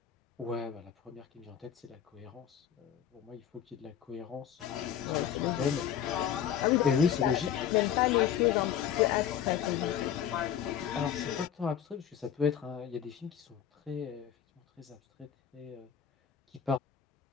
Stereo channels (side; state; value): right; quieter; 9.3 dB